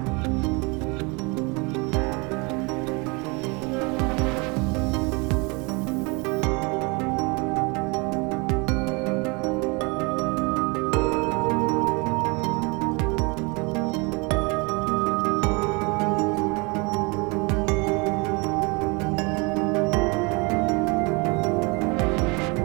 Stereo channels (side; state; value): left; quieter; 29.0 dB